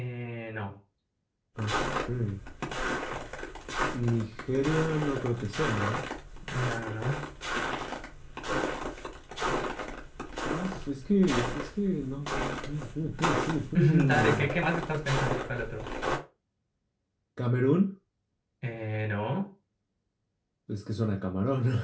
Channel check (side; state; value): both; identical; correlation 1.00